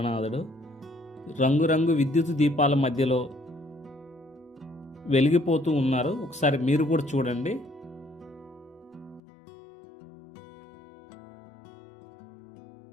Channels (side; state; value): right; drops out; at 9.2 s